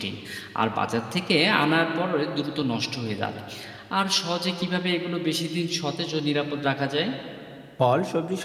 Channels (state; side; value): identical; both; correlation 1.00